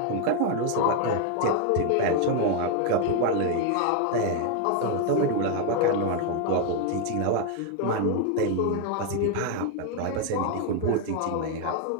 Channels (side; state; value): both; different; correlation 0.00